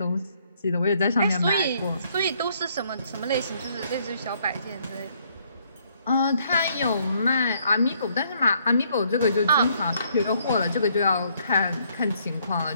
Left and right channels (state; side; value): inverted; both; correlation -0.68